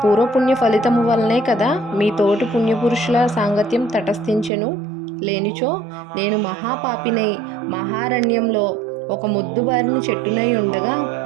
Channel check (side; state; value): left; drops out; at 4.5 s